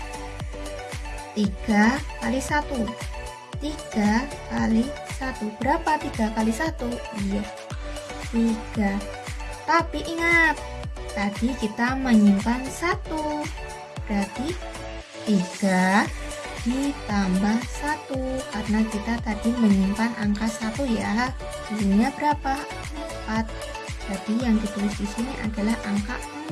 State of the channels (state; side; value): identical; both; correlation 1.00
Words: 3 kali 1. 3 kali 1. Berapa 3 kali 1? Iya, 3. Tapi ingat, tadi kita menyimpan 1. Berarti 3 ditambah 1. Karena kita tadi menyimpan angka 1 ya. Hasilnya berapa? 4. Jadi yang ditulis di sini adalah angka